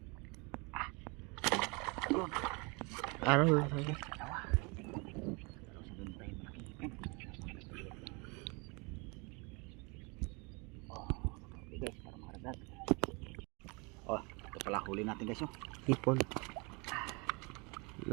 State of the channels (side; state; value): left; quieter; 29.6 dB